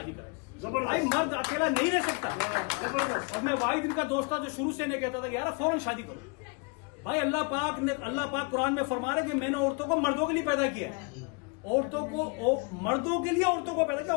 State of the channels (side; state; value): right; quieter; 32.3 dB